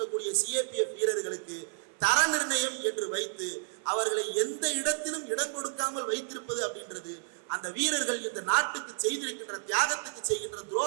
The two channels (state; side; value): silent; left; 57 dB below the other